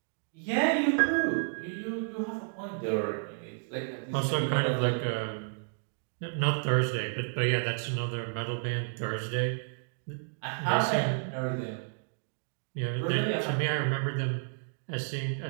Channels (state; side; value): silent; left; digital silence